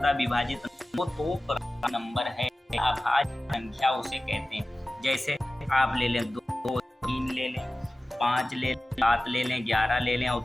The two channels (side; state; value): both; normal; correlation 0.96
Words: विभाजित हो तो प्राइम नंबर है। अभाज्य संख्या उसे कहते हैं। जैसे आप ले लें 2 3 ले लें, 5 ले लें, 7 ले लें, 11 ले लें और